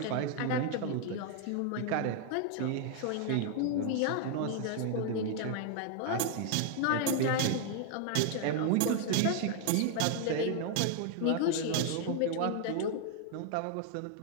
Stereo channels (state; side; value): different; both; correlation 0.00